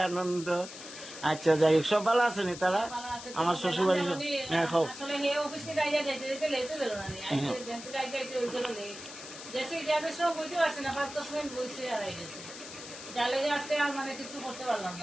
আনন্দ। আচ্ছা যাই হোক, সব ভালো আছে নি তারা? আমার শ্বশুর বাড়ি। হ্যাঁ খাও।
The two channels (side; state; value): left; noise; hiss, 12 dB below the sound